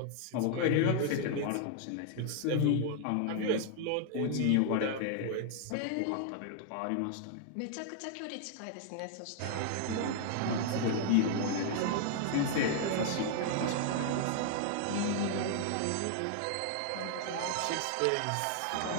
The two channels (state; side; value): different; both; correlation 0.00